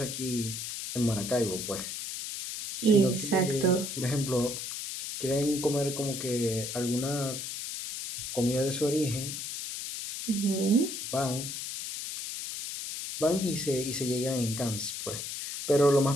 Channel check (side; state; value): left; noise; hiss, 6 dB below the sound